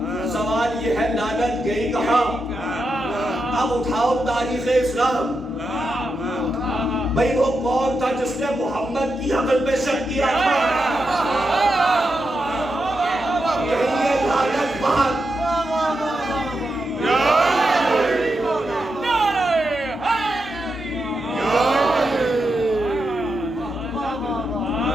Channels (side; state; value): both; normal; correlation 0.86